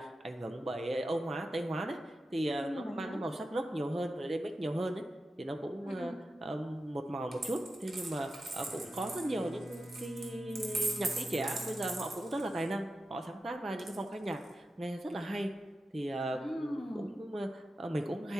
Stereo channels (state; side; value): normal; both; correlation 0.91